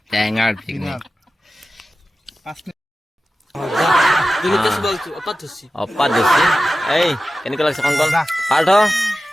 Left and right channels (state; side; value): normal; both; correlation 0.94